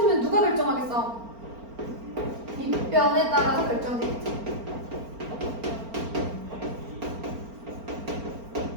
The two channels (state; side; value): late; left; 4.4 ms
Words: 누가 결정하겠어? 밑변에 따라서 결정되겠지.